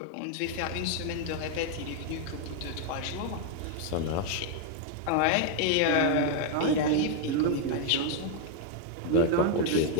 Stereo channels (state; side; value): different; both; correlation 0.00